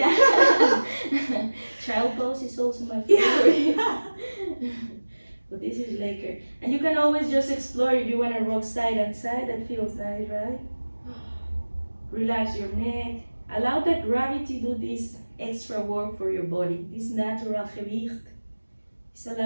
Child pose is also my favorite. But this is later. And you can always just explore if you want to rock side and side. That feels nice, right? Relax your neck. Allow that gravity to do this extra work for your body. This natural gewicht is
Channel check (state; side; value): inverted; both; correlation -1.00